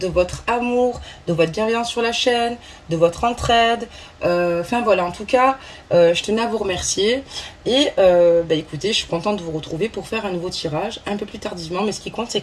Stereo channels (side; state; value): both; identical; correlation 1.00